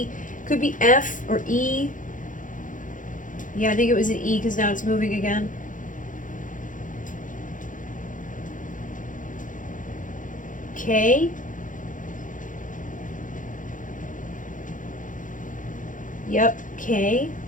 could be F or E. Yeah, I think it was an E because now it's moving again. K. Yep, K.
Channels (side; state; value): right; late; 0.38 ms